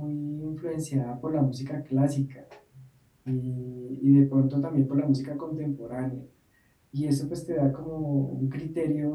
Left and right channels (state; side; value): identical; both; correlation 1.00